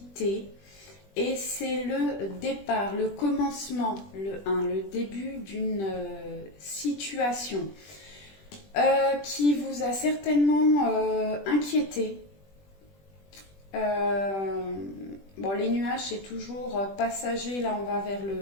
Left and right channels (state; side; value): late; right; 20 ms